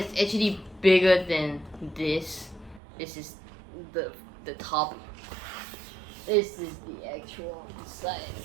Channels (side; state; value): left; drops out; at 2.8 s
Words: actually bigger than this. This is the top. This is the actual